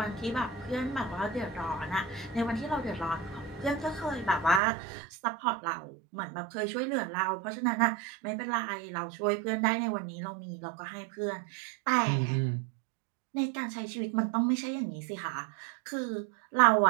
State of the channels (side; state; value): left; drops out; at 4.6 s